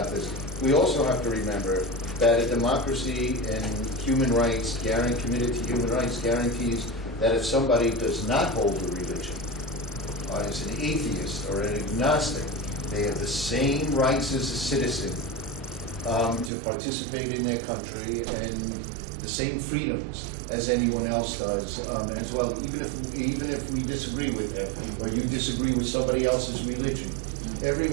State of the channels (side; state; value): left; drops out; at 16.5 s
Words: this, we also have to remember that a democracy and human rights, committed to human rights, guarantees that if somebody does not hold a religion, as an atheist or an agnostic, they have the same rights as a citizen to participate in their country and the same freedoms as anyone else does as well, even if we disagree with them or you disagree with somebody else's religion.